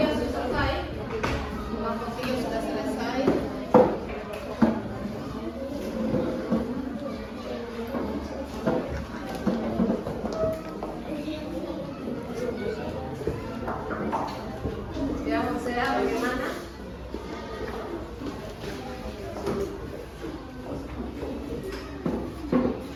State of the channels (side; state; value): both; identical; correlation 1.00